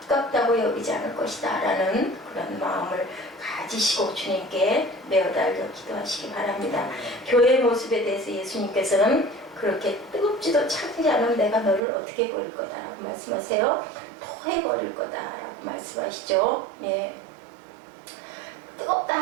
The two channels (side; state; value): left; drops out; at 11.8 s